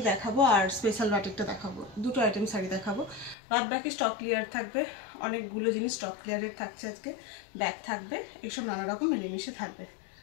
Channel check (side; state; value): right; drops out; at 3.4 s